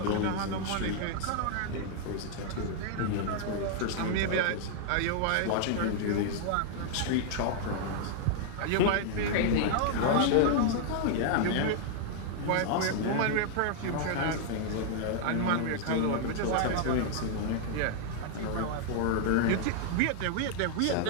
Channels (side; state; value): both; different; correlation 0.00